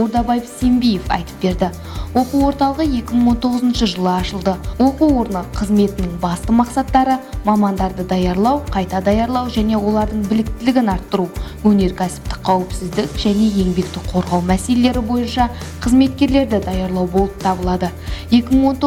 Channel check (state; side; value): identical; both; correlation 1.00